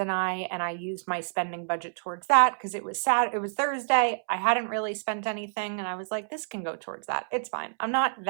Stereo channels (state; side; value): silent; left; 59 dB below the other